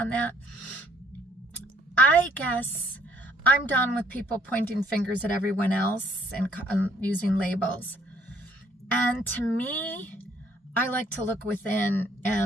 that. I guess I'm done with people pointing fingers at everyone else and using labels. And to me, I like to look within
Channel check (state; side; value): normal; both; correlation 0.64